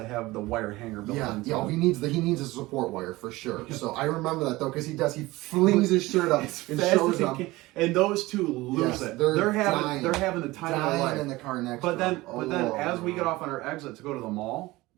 have the wire hanger built into Yeah, them. he needs a support wire for sure. So I remember that though, because he flings his shirt up and Fast shows as he them. can. And those two lose Yes, it. they're They're dying. having the time of their Dying life. in the car next But to then, him. as we get off on our exit to go to the mall,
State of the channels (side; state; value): left; quieter; 19.8 dB